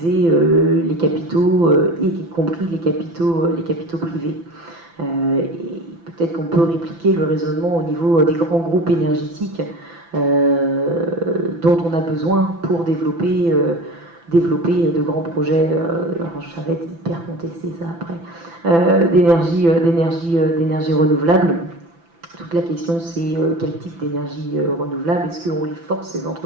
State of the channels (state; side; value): late; left; 6.0 ms